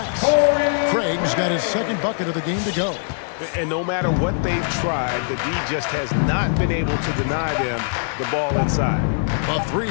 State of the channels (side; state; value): right; silent; digital silence